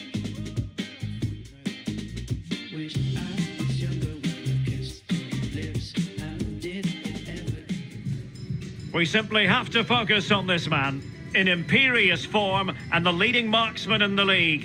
Wish I was younger when I kissed your lips. How did it ever? We simply have to focus on this man. In imperious form and the leading marksman in the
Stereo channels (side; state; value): both; identical; correlation 1.00